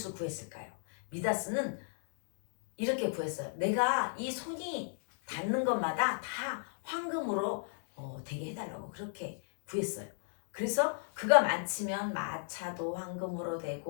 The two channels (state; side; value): silent; right; digital silence